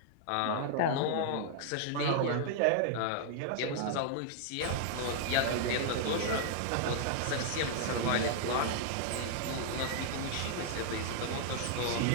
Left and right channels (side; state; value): both; different; correlation -0.01